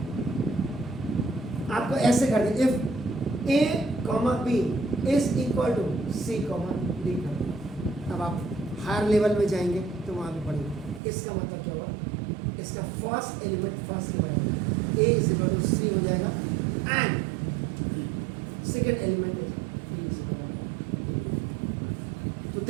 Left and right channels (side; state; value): left; drops out; at 11.0 s